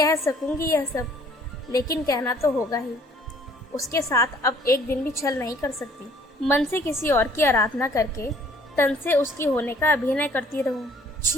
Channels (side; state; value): both; normal; correlation 0.58